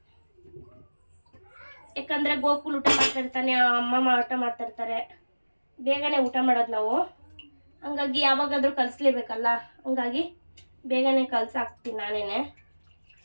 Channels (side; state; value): both; inverted; correlation -1.00